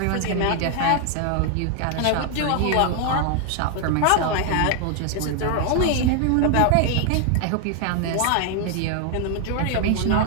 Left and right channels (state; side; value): different; both; correlation 0.00